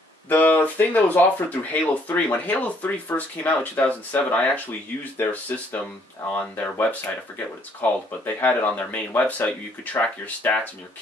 The thing that was offered through Halo 3, when Halo 3 first came out in 2007, I actually used their system on their website. I forget what it's called, but they had it on their main website where you could track your stats and your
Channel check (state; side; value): normal; both; correlation 0.65